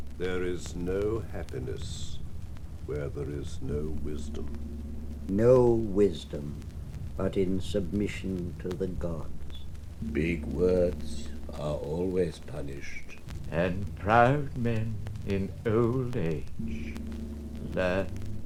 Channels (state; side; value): identical; both; correlation 1.00